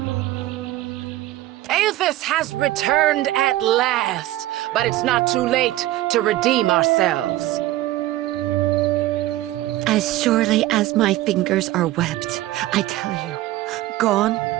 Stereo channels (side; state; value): left; quieter; 16.1 dB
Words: Aethys has returned at last, but it's not too late to redeem ourselves. As surely as my fingers are webbed, I tell you, gone,